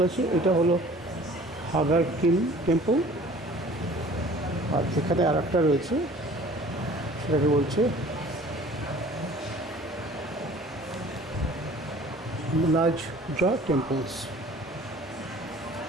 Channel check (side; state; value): both; normal; correlation 0.49